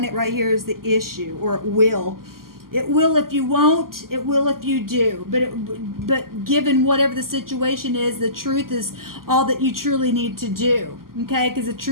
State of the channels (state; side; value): late; left; 0.92 ms